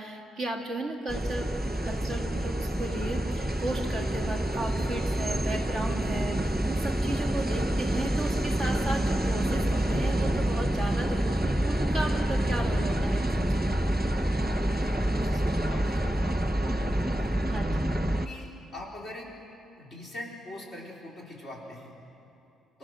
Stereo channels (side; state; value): both; normal; correlation 0.91